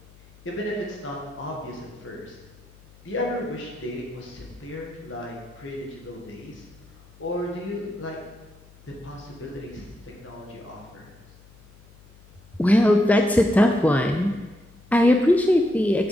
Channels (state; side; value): noise; left; hum, 25 dB below the sound